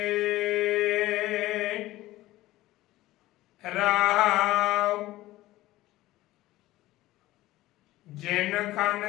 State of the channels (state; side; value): quieter; right; 16.9 dB